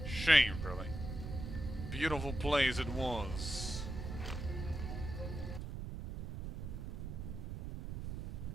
Shame, really. Beautiful place it was.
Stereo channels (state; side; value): noise; right; rumble, 6 dB below the sound